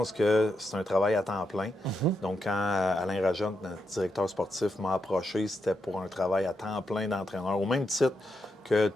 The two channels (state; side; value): normal; both; correlation 0.84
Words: que c'est un travail à temps plein. Donc, quand Alain Rajotte, notre directeur sportif, m'a approché, c'était pour un travail à temps plein d'entraîneur, au même titre que